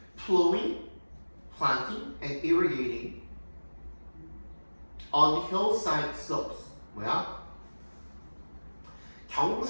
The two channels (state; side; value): inverted; both; correlation -1.00